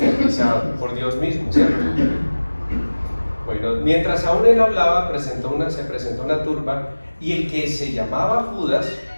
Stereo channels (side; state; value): both; inverted; correlation -1.00